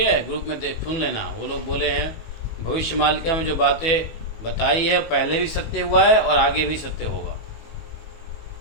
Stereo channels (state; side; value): late; right; 19 ms